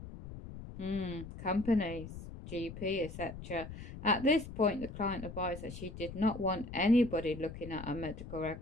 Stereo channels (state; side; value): noise; left; rumble, 11 dB below the sound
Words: companies, GP, etc. At this point, the client advised that she did not want anybody looking at her medical